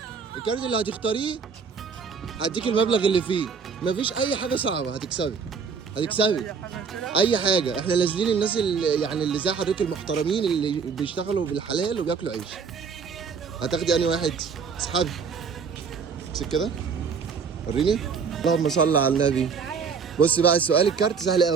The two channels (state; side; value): quieter; left; 5.8 dB